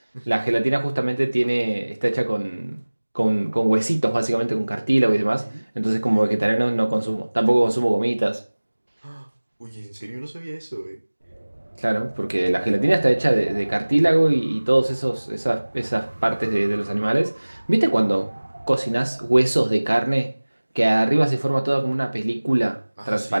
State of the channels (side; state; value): both; inverted; correlation -1.00